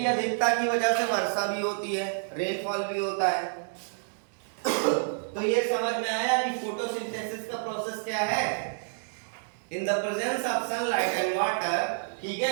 अधिकता की वजह से वर्षा भी होती है, रेनफॉल भी होता है। तो ये समझ में आया कि फोटोसिंथेसिस का प्रोसेस क्या है? In the presence of sunlight and water, ठीक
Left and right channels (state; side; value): silent; left; digital silence